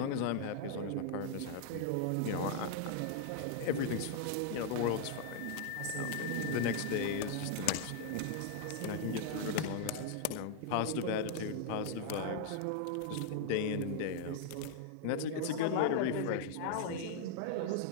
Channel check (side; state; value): both; different; correlation 0.00